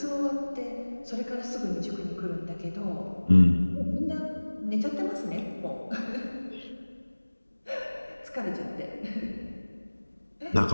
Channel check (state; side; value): inverted; both; correlation -1.00